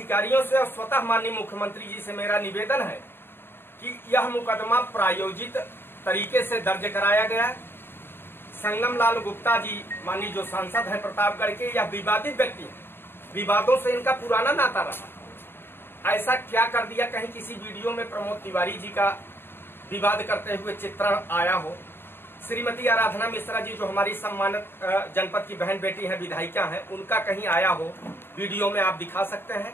से और स्वतः माननीय मुख्यमंत्री जी से मेरा निवेदन है कि यह मुकदमा प्रायोजित तरीके से दर्ज कराया गया। संगम लाल गुप्ता जी माननीय जो सांसद हैं प्रतापगढ़ के, यह विवादित व्यक्ति हैं, विवादों से इनका पुराना नाता रहा। ऐसा क्या कर दिया कहीं किसी वीडियो में प्रमोद तिवारी जी का विवाद करते हुए चित्रण आया हो। श्रीमती आराधना मिश्रा जी जो हमारी सम्मानित जनपद की बहन बेटी है, विधायिका है, उनका कहीं आया हो वीडियो में आप दिखा सकते हैं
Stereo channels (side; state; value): right; late; 0.11 ms